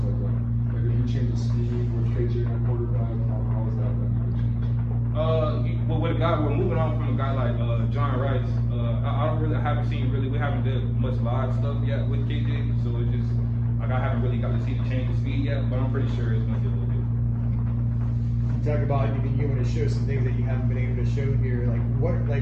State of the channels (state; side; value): identical; both; correlation 1.00